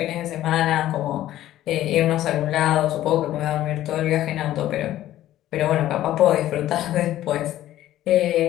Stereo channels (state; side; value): quieter; right; 13.6 dB